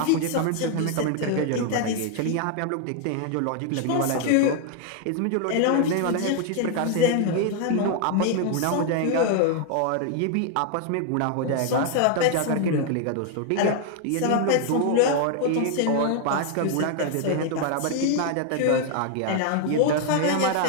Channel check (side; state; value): both; different; correlation 0.00